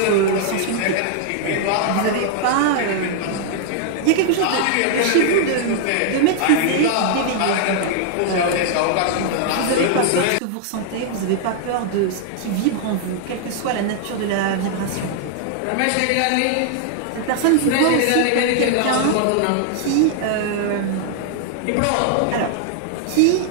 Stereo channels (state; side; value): different; both; correlation -0.01